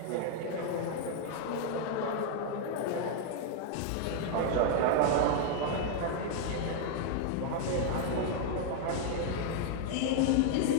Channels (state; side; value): different; both; correlation 0.00